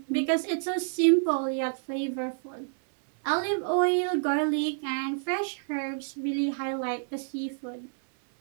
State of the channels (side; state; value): left; silent; 59 dB below the other